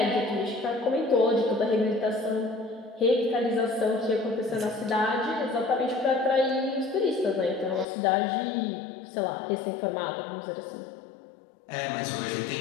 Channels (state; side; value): drops out; right; at 7.9 s